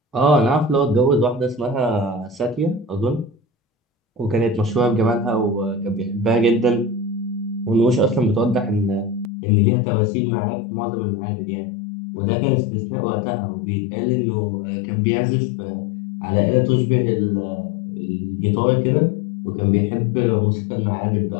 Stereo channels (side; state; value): right; drops out; at 9.3 s